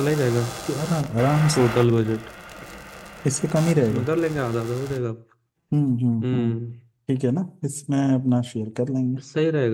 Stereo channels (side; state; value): both; identical; correlation 1.00